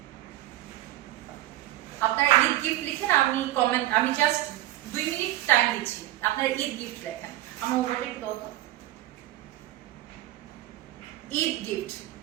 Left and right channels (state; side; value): quieter; left; 15.4 dB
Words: আপনারা ঈদ গিফট লিখেন, আমি জাস্ট 2 মিনিট টাইম দিচ্ছি, আপনারা ঈদ গিফট লেখেন। আমার মোবাইলটা একটু দাও তো। ঈদ গিফট।